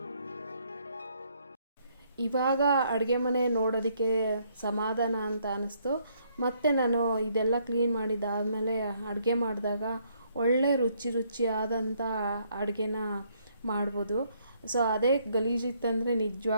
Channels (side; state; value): both; inverted; correlation -0.69